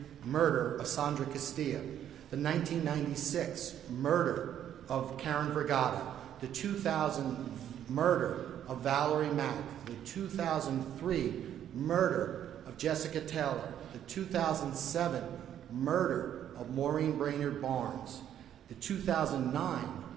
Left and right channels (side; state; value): left; quieter; 10.4 dB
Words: murder of Sandra Castilla, the 1996 murder of Karen Vergata, the 2000 murder of Valerie Mack, the 2003 murder of Jessica Taylor, the 2007 murder of Maureen Brainerd Barnes, the 2009